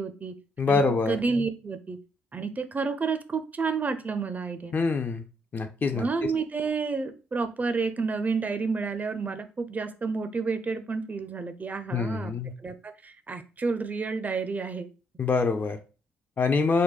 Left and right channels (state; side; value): normal; both; correlation 0.73